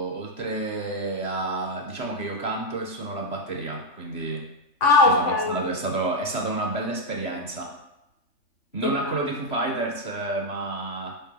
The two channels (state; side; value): late; right; 3.0 ms